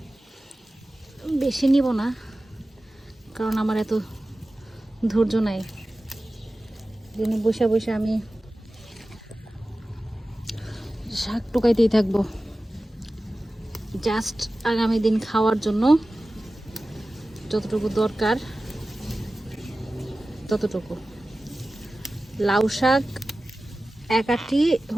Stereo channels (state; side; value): normal; both; correlation 0.96